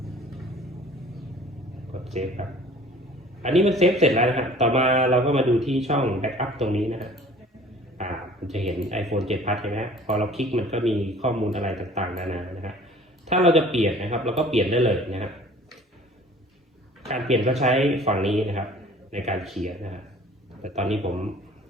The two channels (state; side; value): normal; both; correlation 0.49